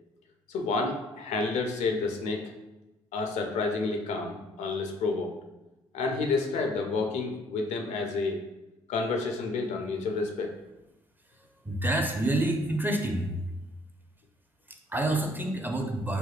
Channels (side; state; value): both; normal; correlation 0.60